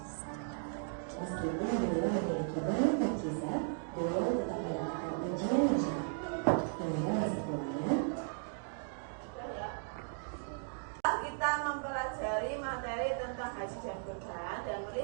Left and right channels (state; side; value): silent; left; digital silence